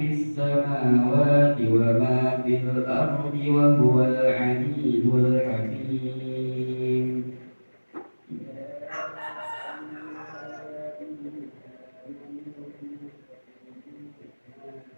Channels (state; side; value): inverted; both; correlation -1.00